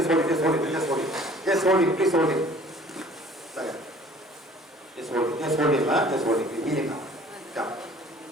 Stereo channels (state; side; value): normal; both; correlation 0.51